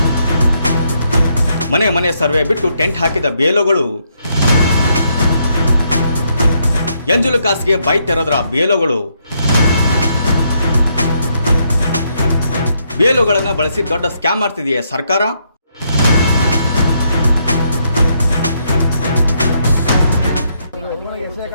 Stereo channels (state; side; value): inverted; both; correlation -0.75